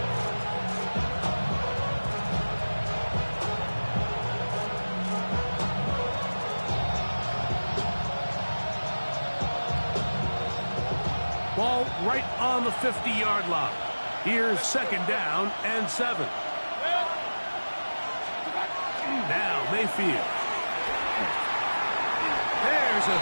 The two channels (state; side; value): inverted; both; correlation -1.00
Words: Ball right on the 50-yard line. Here's second down and 7. Now Mayfield. There's a